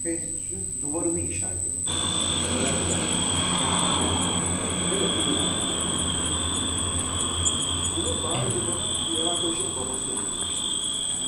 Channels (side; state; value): both; identical; correlation 1.00